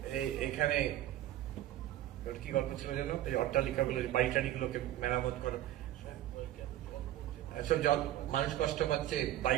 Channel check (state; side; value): quieter; left; 13.5 dB